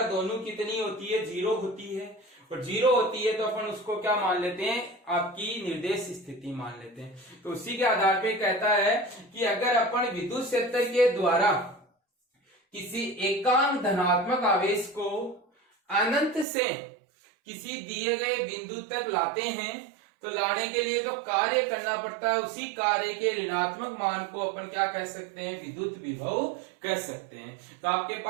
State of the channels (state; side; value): drops out; left; at 16.4 s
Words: दोनों कितनी होती है, 0 होती है, और 0 होती है तो अपन उसको क्या मान लेते हैं, आपकी निर्देश स्थिति मान लेते हैं। तो उसी के आधार पे कहता है कि अगर अपन विद्युत क्षेत्र के द्वारा किसी एकांक धनात्मक आवेश को अनंत से किसी दिए गए बिंदु तक लाते हैं तो लाने के लिए जो कार्य करना पड़ता है उसी कार्य के ऋणात्मक मान को अपन क्या कह सकते हैं, विद्युत विभव कह सकते हैं। तो आपके